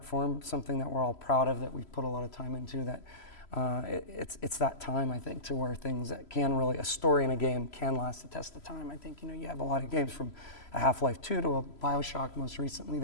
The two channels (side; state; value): right; late; 3.0 ms